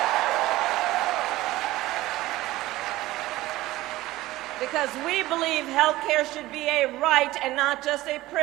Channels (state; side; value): quieter; left; 17.4 dB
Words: Because we believe health care should be a right and not just a